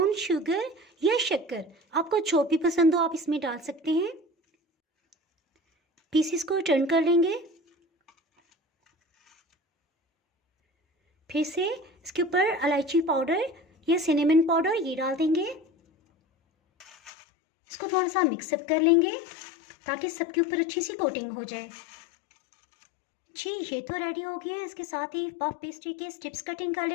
शुगर या शक्कर, आपको जो भी पसंद हो आप इसमें डाल सकते हैं। पीसेस को टर्न कर लेंगे। फिर से इसके ऊपर इलायची पाउडर या सिनेमन पाउडर ये डाल देंगे। इसको थोड़ा सा मिक्सअप कर लेंगे ताकि सबके ऊपर अच्छी सी कोटिंग हो जाए। जी, ये तो रेडी हो गया है। इसके साथ ही पफ पेस्ट्री के स्ट्रिप्स कटिंग कर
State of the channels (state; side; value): drops out; right; at 17.1 s